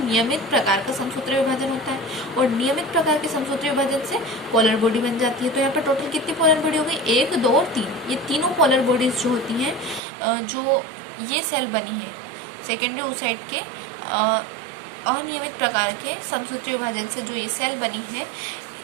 नियमित प्रकार का समसूत्रीय विभाजन होता है, और नियमित प्रकार के समसूत्रीय विभाजन से पोलर बॉडी बन जाती है। तो यहाँ पर टोटल कितनी पोलर बॉडी हो गई, 1, 2 और 3, ये तीनों पोलर बॉडीज जो होती हैं, जो ये सेल बनी है सेकेंडरी oocyte के अनियमित प्रकार के समसूत्रीय विभाजन से जो ये सेल बनी है,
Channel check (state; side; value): drops out; left; at 10.0 s